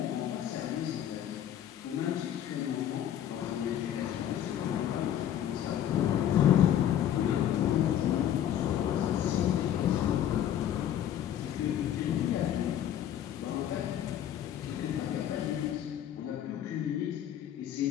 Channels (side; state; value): right; quieter; 10.7 dB